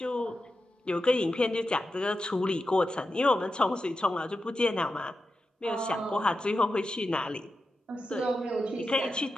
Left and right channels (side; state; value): both; normal; correlation 0.90